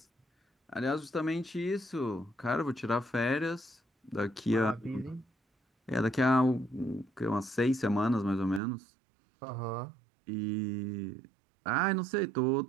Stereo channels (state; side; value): drops out; left; at 8.6 s